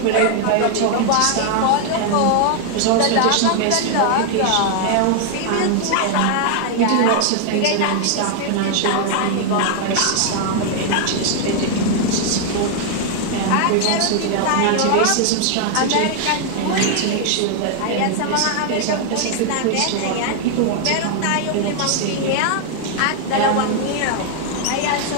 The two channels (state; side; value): different; both; correlation 0.00